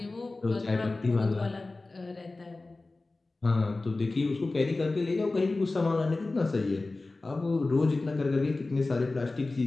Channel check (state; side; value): quieter; right; 3.3 dB